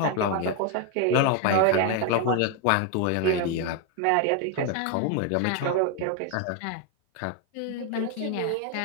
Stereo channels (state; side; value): different; both; correlation 0.01